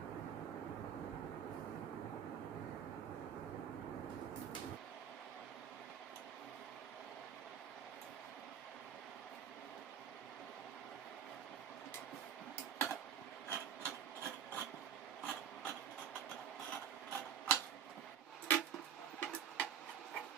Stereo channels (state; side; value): quieter; left; 8.5 dB